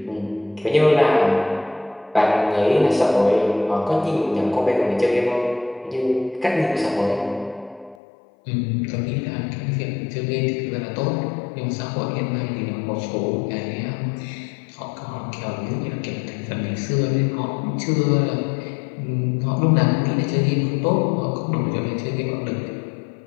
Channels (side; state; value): right; drops out; at 8.0 s